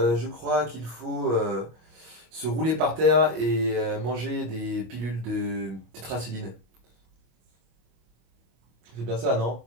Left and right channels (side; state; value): left; late; 25 ms